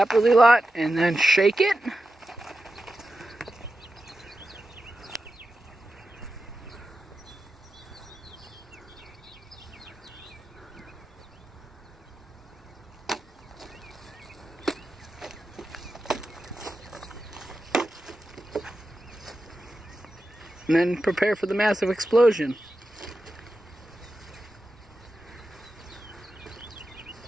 really lot and then shake it. And then prepare for the massive explosion.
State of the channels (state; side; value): normal; both; correlation 0.91